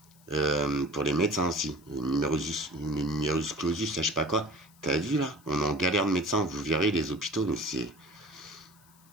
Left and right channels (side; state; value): left; noise; hiss, 28 dB below the sound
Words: Pour les médecins aussi, numerus clausus, je sais pas quoi. T'as vu là? On est en galère de médecins, vous verrez les hôpitaux, mais c'est...